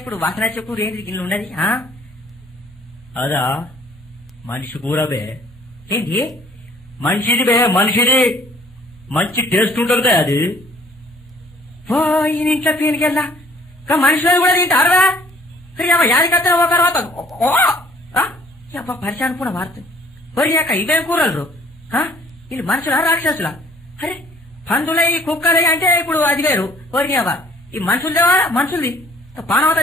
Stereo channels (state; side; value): normal; both; correlation 0.57